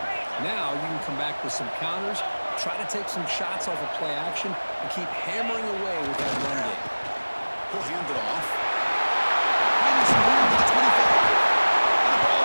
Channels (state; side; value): inverted; both; correlation -1.00